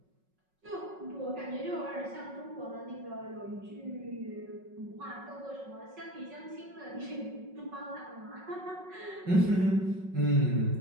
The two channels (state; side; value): late; left; 5.4 ms